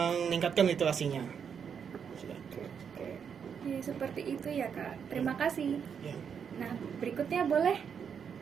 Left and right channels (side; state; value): left; quieter; 7.2 dB